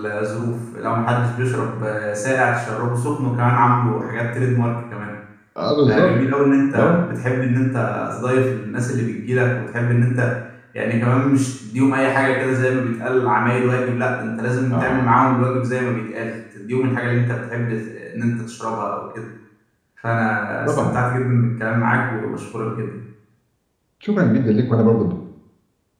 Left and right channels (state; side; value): identical; both; correlation 1.00